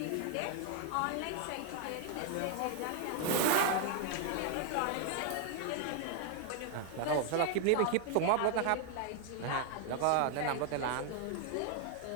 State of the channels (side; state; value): both; different; correlation 0.00